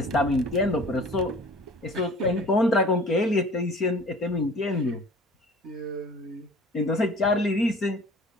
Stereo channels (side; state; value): both; normal; correlation 0.46